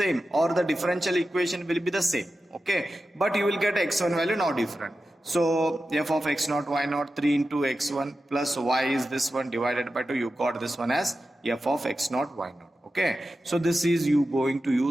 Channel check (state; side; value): normal; both; correlation 0.92